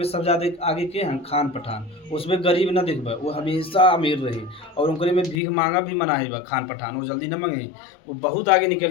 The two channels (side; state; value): right; drops out; at 5.4 s